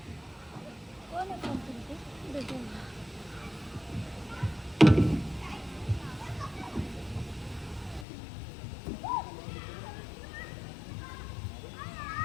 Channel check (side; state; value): right; drops out; at 8.1 s